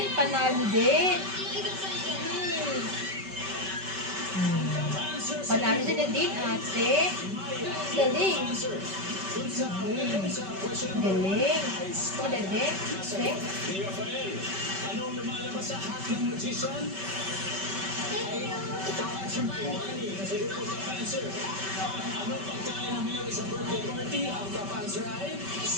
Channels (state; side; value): late; left; 5.2 ms